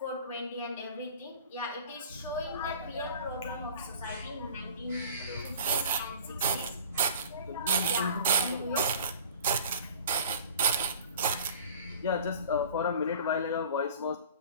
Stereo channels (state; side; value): inverted; both; correlation -0.44